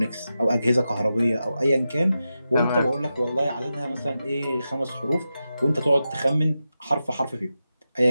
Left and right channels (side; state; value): both; inverted; correlation -0.90